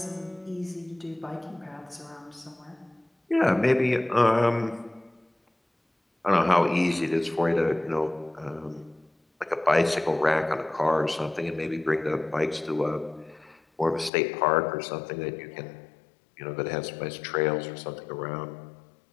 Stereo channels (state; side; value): drops out; right; at 14.1 s